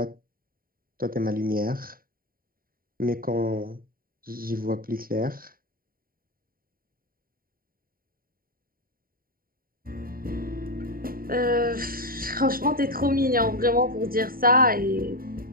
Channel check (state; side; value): late; left; 0.42 ms